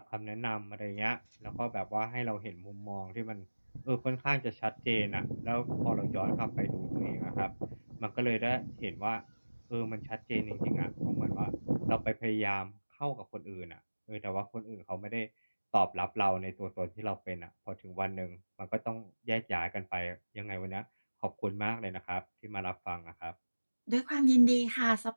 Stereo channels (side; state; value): both; inverted; correlation -1.00